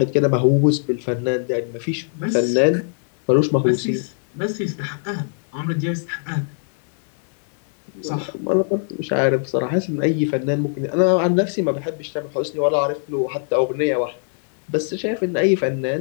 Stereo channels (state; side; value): silent; right; 63 dB below the other